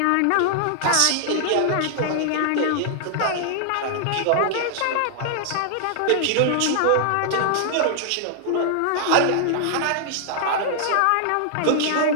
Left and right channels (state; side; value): different; both; correlation -0.01